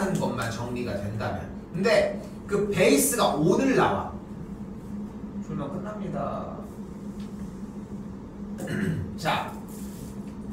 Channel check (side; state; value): both; identical; correlation 1.00